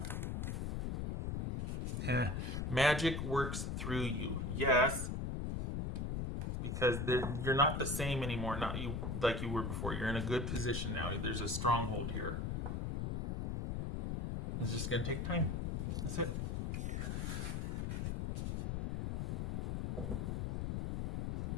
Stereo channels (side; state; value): left; noise; rumble, 1 dB below the sound